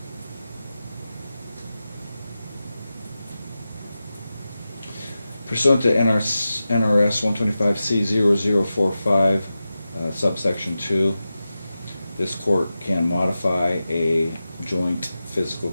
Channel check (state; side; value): inverted; both; correlation -0.93